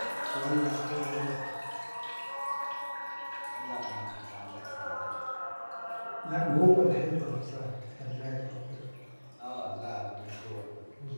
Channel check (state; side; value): inverted; both; correlation -1.00